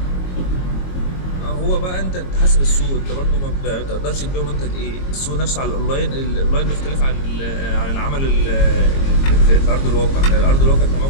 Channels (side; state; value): right; late; 22 ms